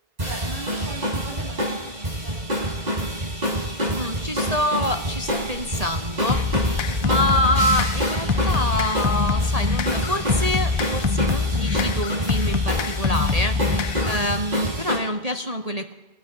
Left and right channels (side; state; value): left; late; 1.8 ms